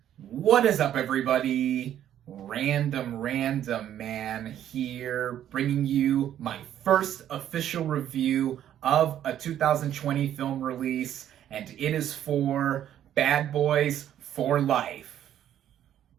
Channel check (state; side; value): quieter; left; 10.9 dB